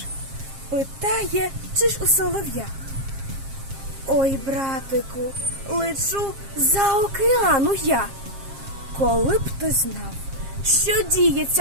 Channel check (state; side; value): late; left; 7.5 ms